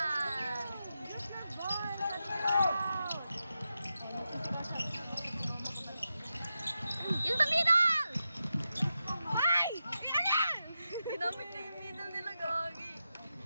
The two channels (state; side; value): inverted; both; correlation -0.89